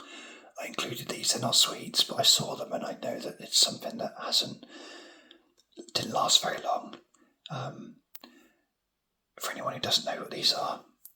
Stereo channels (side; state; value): both; identical; correlation 1.00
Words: I included these. They're not sweets, but I saw them and I know that it's something that didn't last very long. For anyone who doesn't know what these are